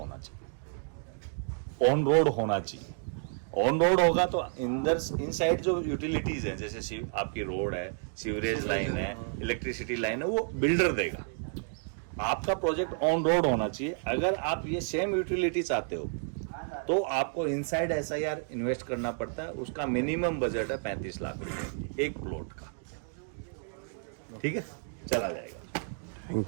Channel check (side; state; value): left; silent; 57 dB below the other